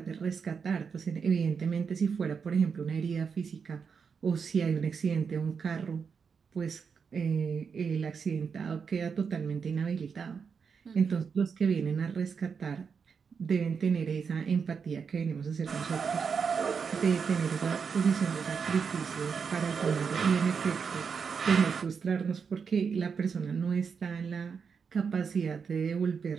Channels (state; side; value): quieter; left; 6.0 dB